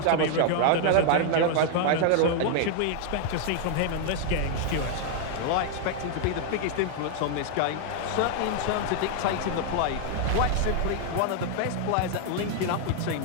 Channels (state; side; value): different; both; correlation 0.00